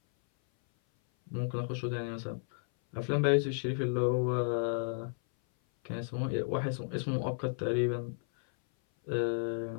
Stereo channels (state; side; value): silent; right; 56 dB below the other